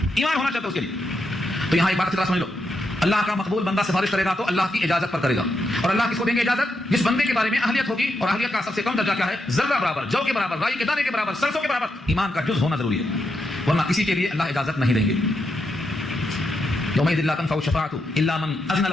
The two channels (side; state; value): both; normal; correlation 0.83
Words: ایمان ہونا چاہتا ہے اس کے لیے. تو یہاں ایک بات سمجھ لو، اللہ کا مقبول بندہ سفارش کرے گا تو اللہ کی اجازت پر کرے گا. اور اللہ کس کو دیں گے اجازت؟ جس بندے کے بارے میں اہلیت ہوگی، اور اہلیت کا سب سے کم درجہ کیا ہے؟ ذرہ برابر، جو کے برابر، رائی کے دانے کے برابر، سرسوں کے برابر ایمان کا جز ہونا ضروری ہے. ورنہ کسی کے لیے اللہ اجازت نہیں دیں گے. یومئذ لا تنفع الشفاعۃ الا من اذن